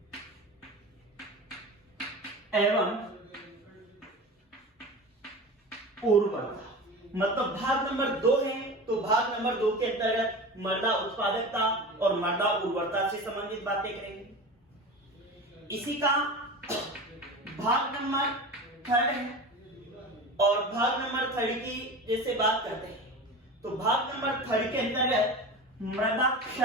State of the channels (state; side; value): normal; both; correlation 0.31